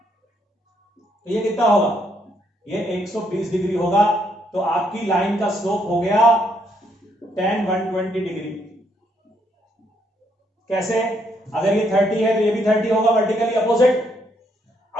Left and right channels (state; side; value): normal; both; correlation 0.73